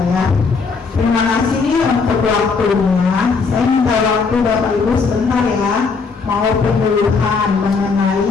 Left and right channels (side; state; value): right; quieter; 4.8 dB